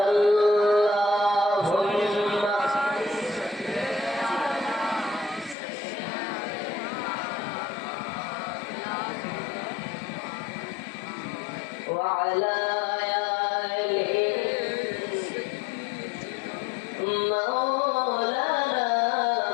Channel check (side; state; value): right; drops out; at 5.6 s